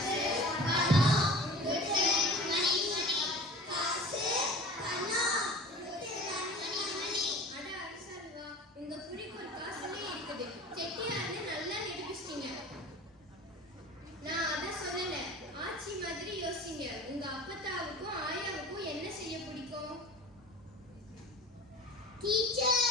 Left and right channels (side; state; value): both; normal; correlation 0.39